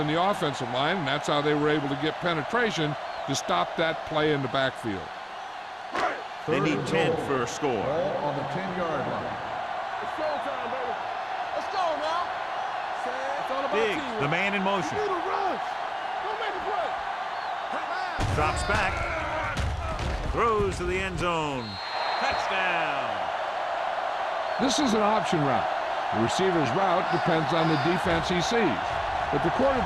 the offensive line, and that's how they were able to get penetration to stop that play in the backfield. They need 10 for a score. Ball on the 10-yard line. It's showtime, baby. Let's go now. It's all about Diggs, teamwork. the man in motion. You need to rush. Don't make a play. Drops back. Throws to the end zone. Touchdown. This is an option route. The receiver's route depends on the defense he sees, but the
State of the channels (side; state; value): both; identical; correlation 1.00